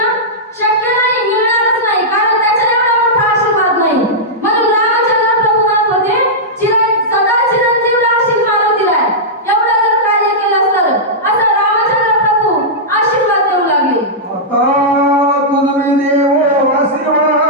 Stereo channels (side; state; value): both; normal; correlation -0.11